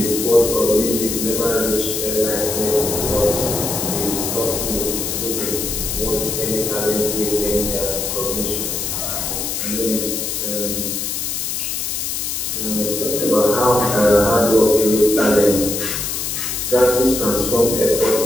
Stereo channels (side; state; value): left; noise; hiss, 2 dB below the sound